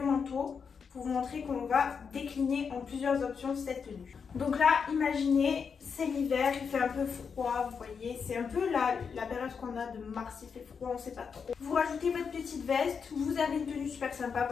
manteau. pour vous montrer qu'on va décliner en plusieurs options cette tenue. Donc là, imaginez, c'est l'hiver, il fait un peu froid, vous voyez, c'est un peu la période qu'on a de mars, il fait froid, on sait pas trop. Vous rajoutez votre petite veste, vous avez une tenue super sympa,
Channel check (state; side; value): quieter; right; 6.1 dB